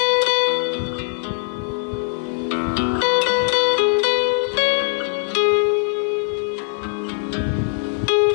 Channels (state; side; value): silent; right; digital silence